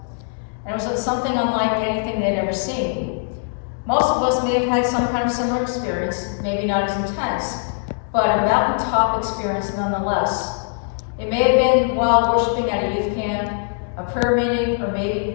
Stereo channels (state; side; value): silent; right; digital silence